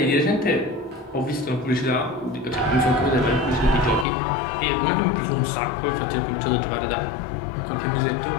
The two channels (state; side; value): drops out; right; at 4.0 s